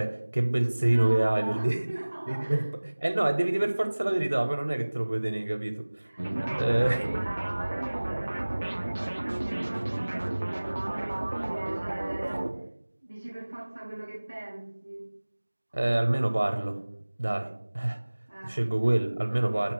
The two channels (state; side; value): inverted; both; correlation -1.00